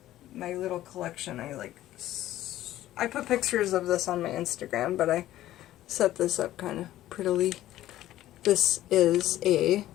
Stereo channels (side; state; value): right; quieter; 14.1 dB